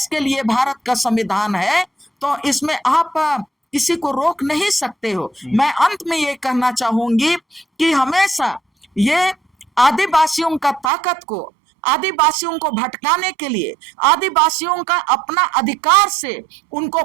के लिए भारत का संविधान है, तो इसमें आप किसी को रोक नहीं सकते हो। मैं अंत में ये कहना चाहूंगी कि हमेशा ये आदिवासियों का ताकत को, आदिवासियों को भटकाने के लिए, आदिवासियों का अपना अधिकार से उनको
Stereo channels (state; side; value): drops out; left; at 10.9 s